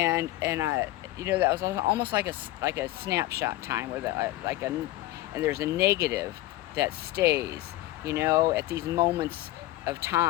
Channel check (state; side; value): quieter; right; 16.5 dB